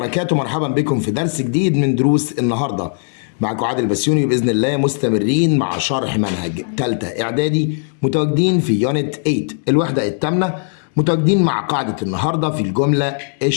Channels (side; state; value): right; silent; digital silence